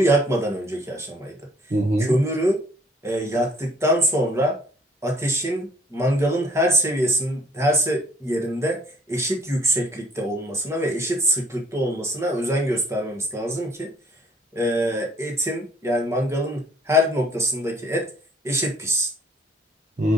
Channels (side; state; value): both; normal; correlation 0.59